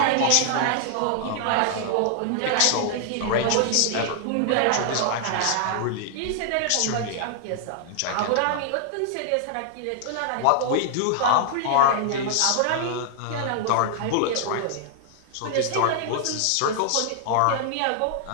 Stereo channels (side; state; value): both; different; correlation -0.01